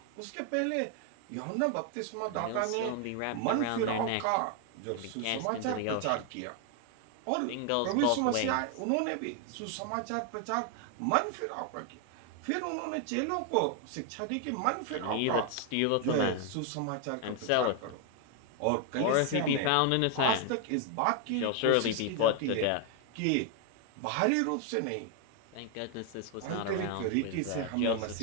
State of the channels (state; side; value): different; both; correlation 0.00